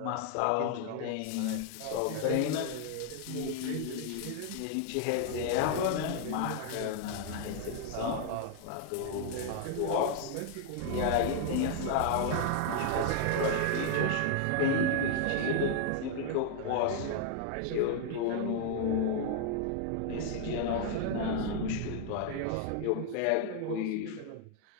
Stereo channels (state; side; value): different; both; correlation 0.00